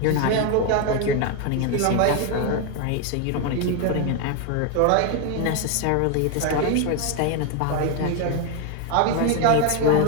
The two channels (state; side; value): different; both; correlation 0.01